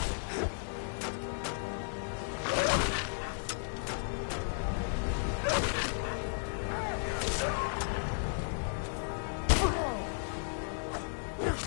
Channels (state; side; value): silent; right; digital silence